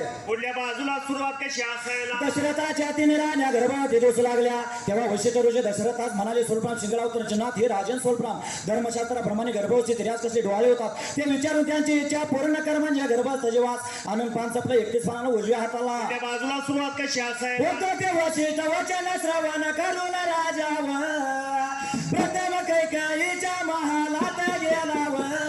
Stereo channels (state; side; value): identical; both; correlation 1.00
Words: पुढल्या बाजूला सुरुवात कशी असायला दशरथाच्या 3 राण्या गर्भात दिवस लागल्या तेव्हा वशिष्ठ ऋषी दशरथास म्हणाले सोलपान शिंगडावतर जनात हे राजन सोलपान धर्मशास्त्राप्रमाणे गर्भवती स्त्रियास कसे डोहाळे होतात ते विचारून त्यांची इच्छा पूर्ण कर म्हणजे गर्भात सजीवास आनंद पान चपला 31 पानाला उजव्या हाताला. पुढल्या बाजूला सुरुवात कशी असायला होतो ते वशिष्ठ वचन श्रवण करून राजावर प्रथम कैकेयीच्या महालात गेलाव